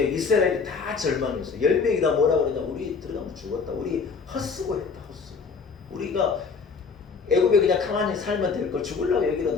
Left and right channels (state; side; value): quieter; right; 5.2 dB